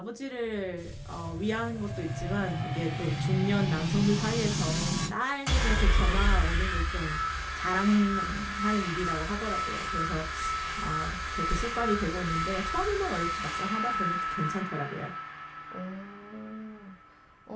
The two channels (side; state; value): both; identical; correlation 1.00